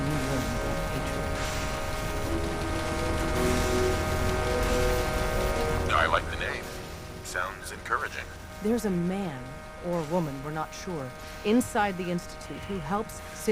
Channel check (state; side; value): identical; both; correlation 1.00